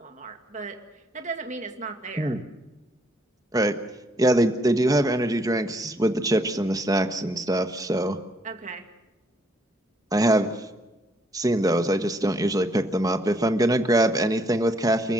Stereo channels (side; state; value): both; normal; correlation 0.69